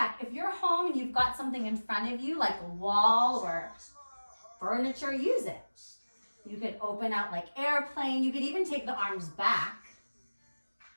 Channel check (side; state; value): both; inverted; correlation -1.00